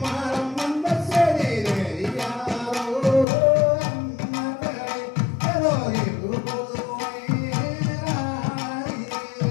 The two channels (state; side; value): drops out; right; at 3.2 s